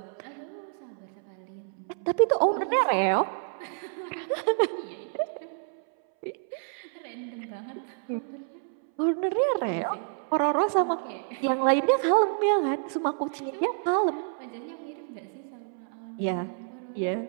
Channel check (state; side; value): silent; left; 59 dB below the other